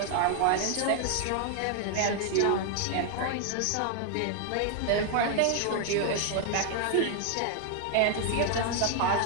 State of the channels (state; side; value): different; both; correlation 0.00